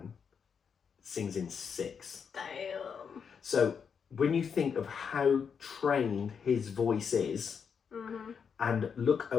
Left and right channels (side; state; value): right; quieter; 6.6 dB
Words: sings in 6. Damn. So when you think of how trained his voice is, and look